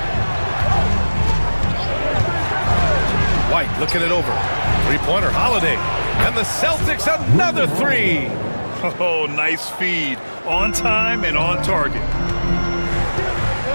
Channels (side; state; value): both; inverted; correlation -1.00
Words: White looking it over. Three-pointer, Holiday. And the Celtics another 3. Oh, nice feed. On time and on target.